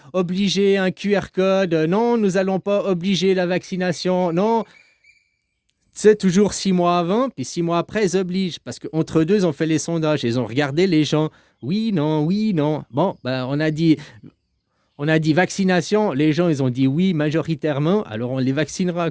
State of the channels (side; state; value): both; identical; correlation 1.00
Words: obliger un QR code. Non, nous n'allons pas obliger la vaccination. Non, c'est toujours 6 mois avant, puis 6 mois après, ils obligent. Parce qu'entre deux, ils ont fait les sondages. Ils ont regardé les gens. Oui, non, oui, non. Bon, ben, on a dit vaccination. Les gens, ils ont dit oui majoritairement. Alors, on les vaccinera,